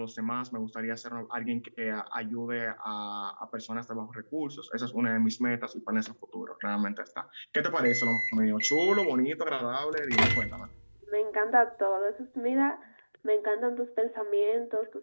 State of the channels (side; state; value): both; inverted; correlation -1.00